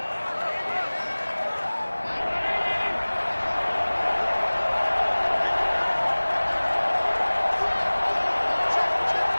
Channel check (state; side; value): inverted; both; correlation -1.00